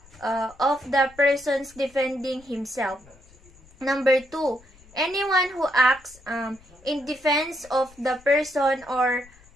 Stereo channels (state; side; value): noise; left; rumble, 26 dB below the sound